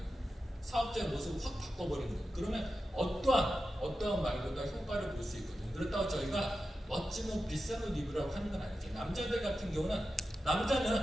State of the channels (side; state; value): both; normal; correlation 0.91